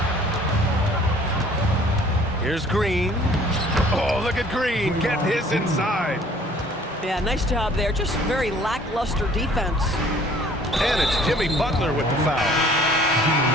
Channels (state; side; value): normal; both; correlation 0.55